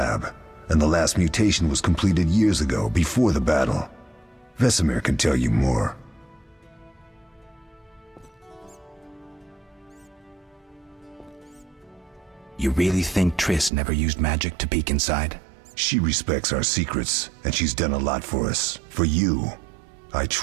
and the last mutation was completed years ago, before the battle. Vesemir can tell you more. You really think Triss never used magic to peek inside? She respects our secrets, and she's done a lot for us. For you. I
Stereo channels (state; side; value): drops out; left; at 13.7 s